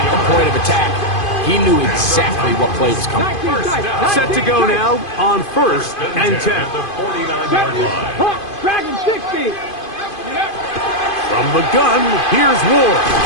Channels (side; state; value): right; late; 2.5 ms